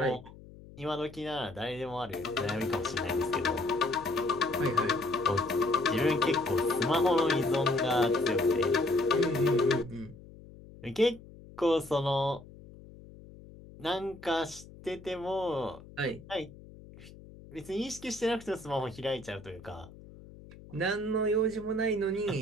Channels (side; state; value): left; noise; hum, 19 dB below the sound